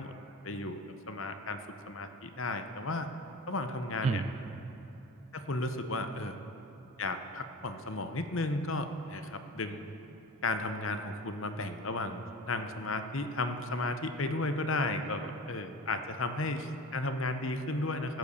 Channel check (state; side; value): normal; both; correlation 0.36